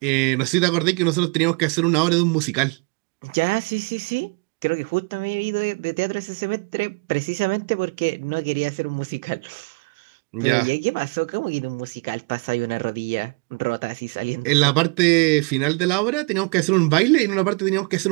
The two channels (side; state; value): left; quieter; 30.9 dB